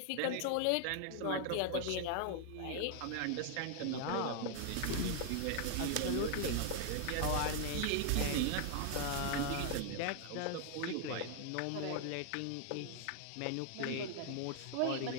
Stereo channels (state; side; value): different; both; correlation 0.00